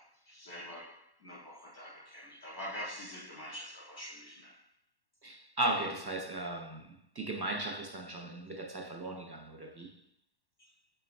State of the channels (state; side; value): late; left; 1.1 ms